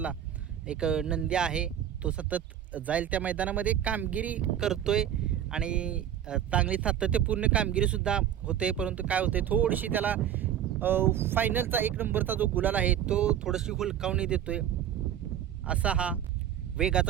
एक नंदी आहे, तो सतत जाईल त्या मैदानामध्ये कामगिरी करतोय आणि चांगली सातत्यपूर्ण कामगिरीसुद्धा होते. परंतु काय होते, थोडीशी त्याला फायनलचा 1 नंबरचा जो गुलाल आहे तो थोडीशी हुलकावणी देतोय. असा हा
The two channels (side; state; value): left; quieter; 10.4 dB